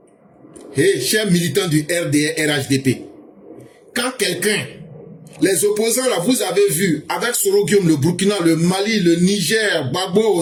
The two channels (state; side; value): identical; both; correlation 1.00